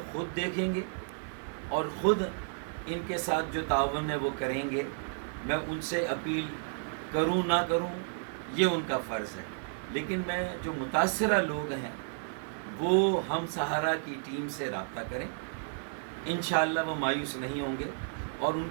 خود دیکھیں گے اور خود ان کے ساتھ جو تعاون ہے وہ کریں گے۔ میں ان سے اپیل کروں نہ کروں یہ ان کا فرض ہے، لیکن میں جو متاثرہ لوگ ہیں وہ ہم سہارا کی ٹیم سے رابطہ کریں، انشاءاللہ وہ مایوس نہیں ہوں گے، اور ان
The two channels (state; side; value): silent; left; digital silence